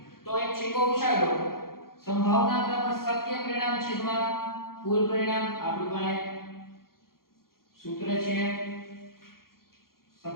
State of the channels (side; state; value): right; late; 0.92 ms